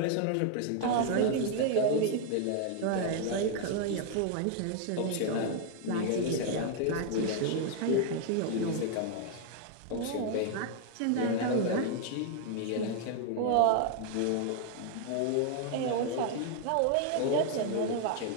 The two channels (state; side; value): different; both; correlation 0.00